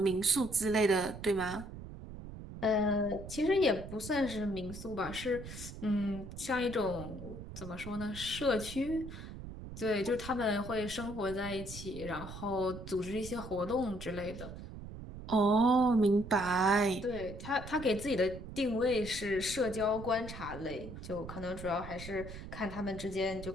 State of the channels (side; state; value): right; noise; rumble, 11 dB below the sound